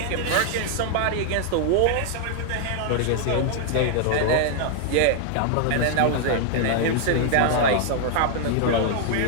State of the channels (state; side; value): different; both; correlation -0.01